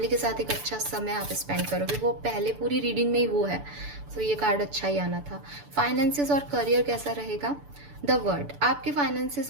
के साथ एक अच्छा समय आप स्पेंड करोगे, वो पहले पूरी रीडिंग में ही वो है। सो ये कार्ड अच्छा ही आना था। फाइनेंसेस और करियर कैसा रहेगा। द वर्ड, आपके फाइनेंसेस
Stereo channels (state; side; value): late; left; 6.9 ms